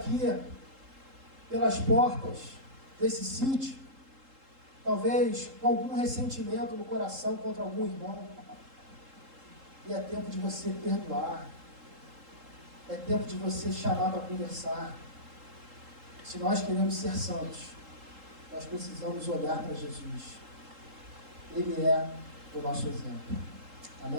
pelas portas desse sítio, talvez com algum ressentimento no coração contra algum irmão. E é tempo de você perdoar. É tempo de você chamar para conversar. Se nós queremos ser santos, nós precisamos olhar para Jesus. Ele é o nosso exemplo.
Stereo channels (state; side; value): late; left; 3.7 ms